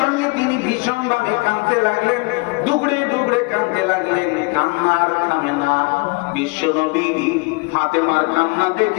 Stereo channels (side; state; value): right; quieter; 28.2 dB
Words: তিনি ভীষণ ভাবে কাঁদতে লাগলেন, দুগড়ে দুগড়ে কাঁদতে লাগলেন, কান্নার থামে না। বিশ্বনবী ফাতেমার কান্না